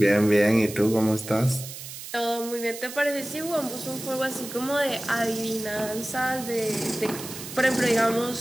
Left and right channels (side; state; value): right; noise; hiss, 11 dB below the sound